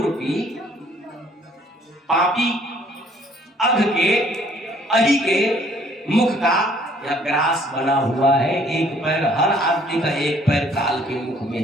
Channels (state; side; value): normal; both; correlation 0.60